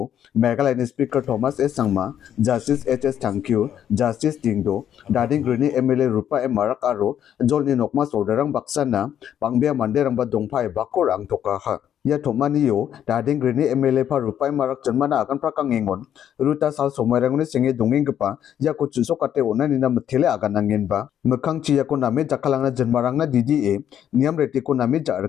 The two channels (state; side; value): quieter; right; 9.9 dB